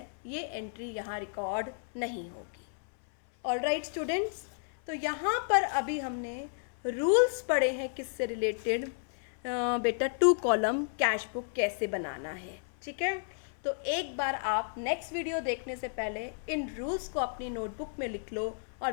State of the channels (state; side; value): silent; right; 56 dB below the other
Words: ये एंट्री यहाँ रिकॉर्ड नहीं होगी। ऑलराइट स्टूडेंट्स, तो यहाँ पर अभी हमने रूल्स पढ़े हैं किससे रिलेटेड, बेटा 2 कॉलम कैश बुक कैसे बनाना है, ठीक है। तो एक बार आप नेक्स्ट वीडियो देखने से पहले इन रूल्स को अपनी नोटबुक में लिख लो और